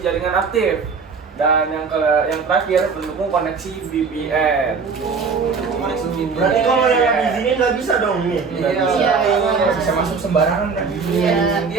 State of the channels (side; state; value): left; quieter; 5.1 dB